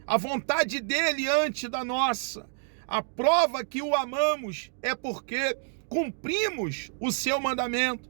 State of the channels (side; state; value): left; silent; digital silence